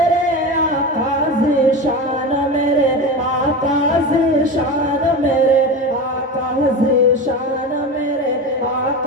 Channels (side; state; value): both; normal; correlation 0.25